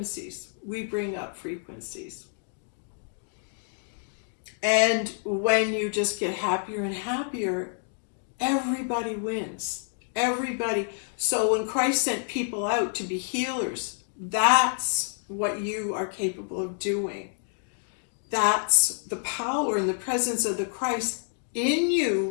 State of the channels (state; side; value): silent; right; 59 dB below the other